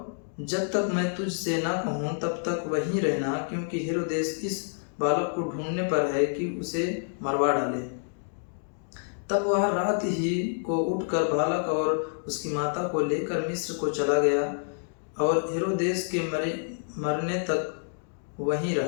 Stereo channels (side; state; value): right; silent; digital silence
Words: जब तक मैं तुझसे ना कहूं तब तक वहीं रहना, क्योंकि हेरोदेस इस बालक को ढूंढने पर है कि उसे मरवा डाले। तब वह रात ही को उठकर बालक और उसकी माता को लेकर मिस्र को चला गया, और हेरोदेस के मरने तक वहीं